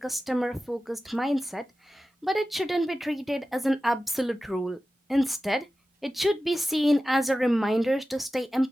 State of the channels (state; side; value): normal; both; correlation 0.94